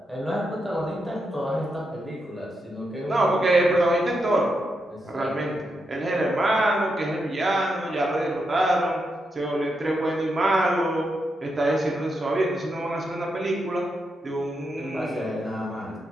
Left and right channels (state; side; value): normal; both; correlation 0.84